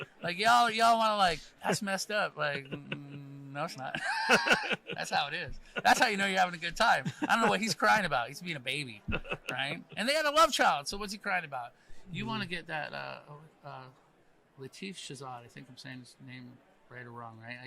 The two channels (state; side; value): identical; both; correlation 1.00